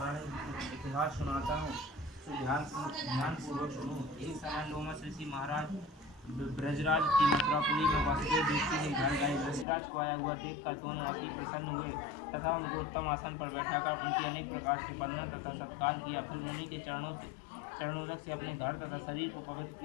इतिहास सुनाता हूँ, तो ध्यानपूर्वक सुनो। एक समय लोमस ऋषि महाराज ब्रजराज की मथुरापुरी में वासुदेव दृष्टि के घर गए। ऋषिराज को आया हुआ देखकर दोनों अति प्रसन्न हुए तथा उनको उत्तम आसन पर बैठाकर उनकी अनेक प्रकार से वंदना तथा सत्कार किया। फिर मुनि के चरणों चरणोदक से अपने घर तथा शरीर को पवित्र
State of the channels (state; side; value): drops out; right; at 9.7 s